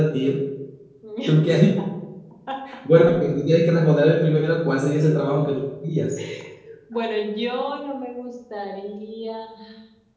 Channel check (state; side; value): identical; both; correlation 1.00